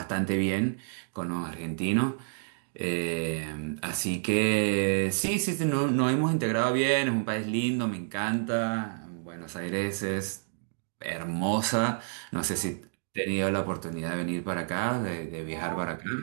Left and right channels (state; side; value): silent; left; digital silence